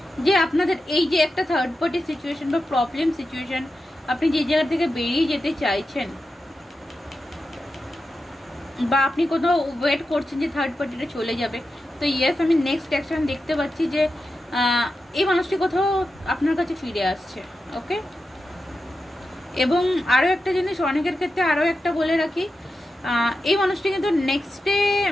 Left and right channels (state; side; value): normal; both; correlation 0.90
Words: যে আপনাদের এই যে একটা থার্ড পার্টি সিচুয়েশন বা প্রবলেম সিচুয়েশন আপনি যে জায়গা থেকে বেরিয়ে যেতে চাইছেন, বা আপনি কোথাও ওয়েট করছেন যে থার্ড পার্টিটা চলে যাবে। তো ইয়েস, আমি নেক্সট অ্যাকশন দেখতে পাচ্ছি যে এই মানুষটি কোথাও আপনার কাছে ফিরে আসছে। ওকে, এবং আরও একটা জিনিস অনেকের ক্ষেত্রে আরও একটা বলে রাখি, এই মানুষটি কিন্তু নেক্সটে